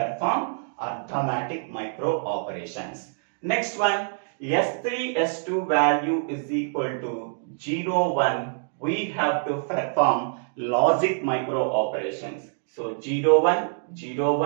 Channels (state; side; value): silent; left; digital silence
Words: arithmetic micro operations. Next one. S3, S2 value is equal to 0, 1. We have to perform logic micro operations. So 0, 1, 0,